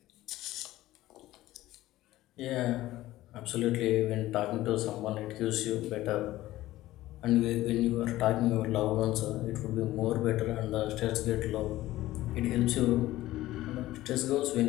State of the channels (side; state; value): right; quieter; 16.0 dB